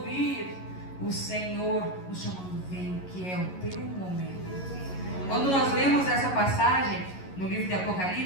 o Senhor nos chamando, vem, que é o teu momento. Quando nós lemos essa passagem no livro de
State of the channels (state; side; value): late; right; 11 ms